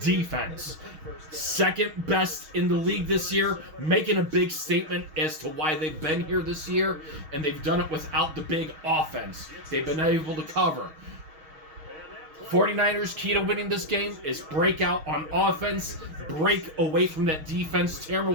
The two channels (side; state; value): left; late; 6.3 ms